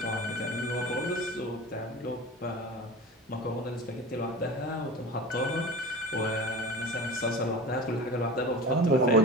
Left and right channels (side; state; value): both; normal; correlation 0.34